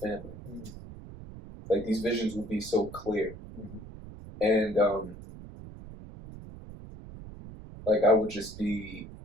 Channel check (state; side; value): noise; right; rumble, 14 dB below the sound